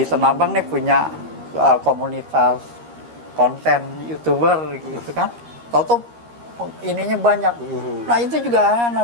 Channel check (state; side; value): late; left; 13 ms